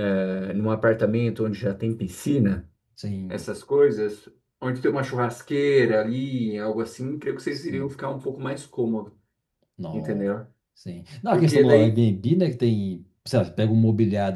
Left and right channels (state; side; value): identical; both; correlation 1.00